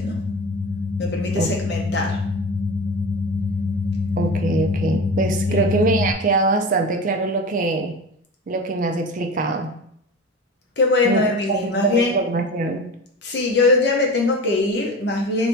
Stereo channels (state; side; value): normal; both; correlation 0.30